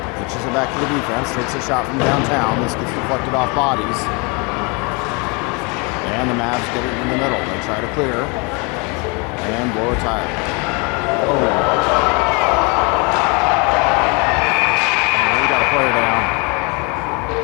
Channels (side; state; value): right; quieter; 31.0 dB